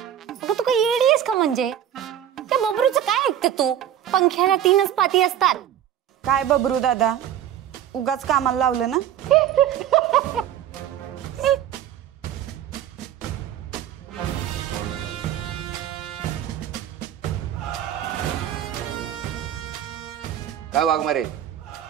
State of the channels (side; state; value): left; quieter; 10.6 dB